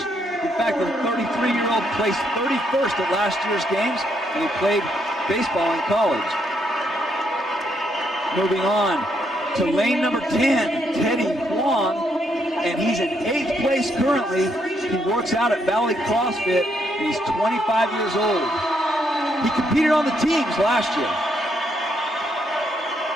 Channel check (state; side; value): normal; both; correlation 0.75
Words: In fact, the 33-year-old placed 31st at last year's games, and he played baseball in college. Moving on to lane number 10, Teddy Huang, and he's in 8th place currently. He works out at Valley CrossFit, and he's 25 years old. He competed on the teams last year.